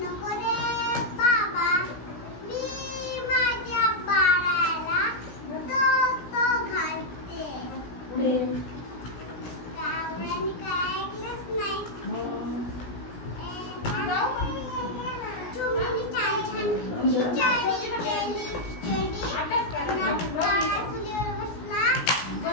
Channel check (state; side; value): late; right; 17 ms